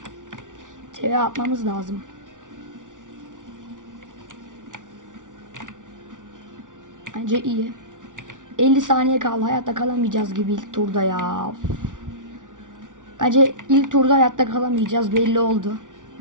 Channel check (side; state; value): left; late; 0.87 ms